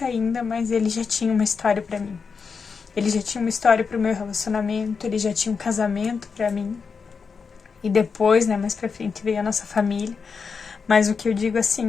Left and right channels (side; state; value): right; quieter; 5.5 dB